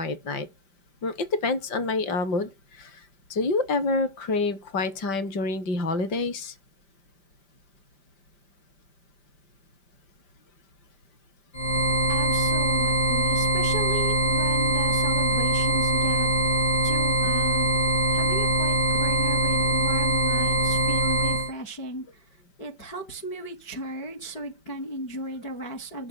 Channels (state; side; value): late; right; 5.1 ms